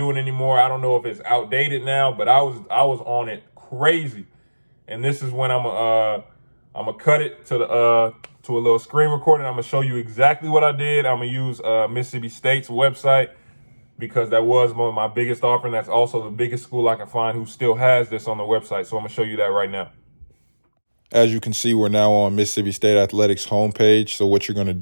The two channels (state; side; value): inverted; both; correlation -1.00